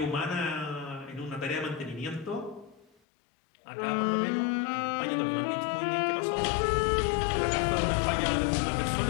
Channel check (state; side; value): drops out; right; at 2.9 s